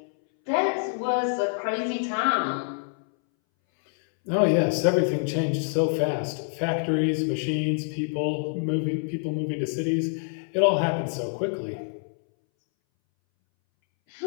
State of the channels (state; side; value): silent; right; 61 dB below the other